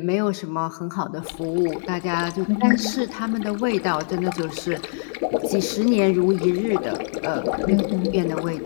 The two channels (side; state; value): right; silent; digital silence